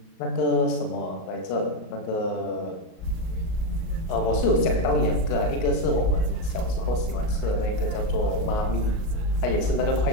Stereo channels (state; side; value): late; right; 38 ms